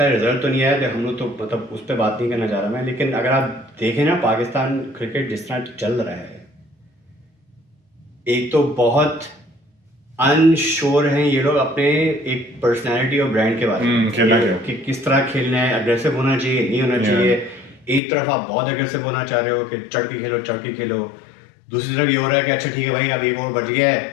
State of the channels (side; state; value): right; drops out; at 18.0 s